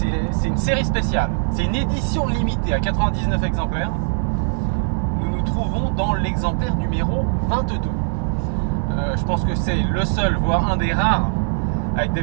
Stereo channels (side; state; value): left; silent; digital silence